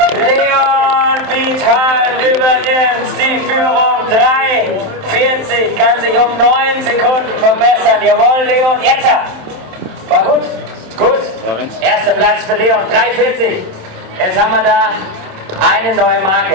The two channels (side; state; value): left; late; 27 ms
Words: Leon Wildheim übernimmt die Führung. 3:40, kann sich um 9 Sekunden verbessern. Jawohl, Leon, jetzt! War gut? Gut. Erster Platz für Leon, 3:40. Jetzt haben wir da eine neue